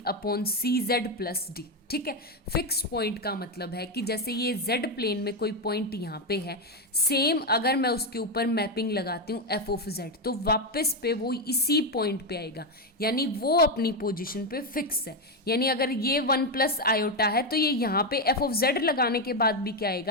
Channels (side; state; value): both; normal; correlation 0.08